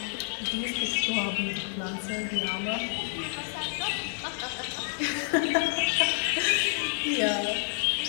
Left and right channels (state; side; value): silent; right; 56 dB below the other